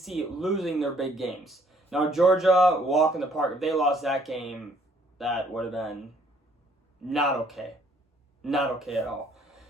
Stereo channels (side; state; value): both; normal; correlation 0.63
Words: losing their big games. Now, Georgia, walk in the park. If they lost that game, that would have been not okay. Not okay at all.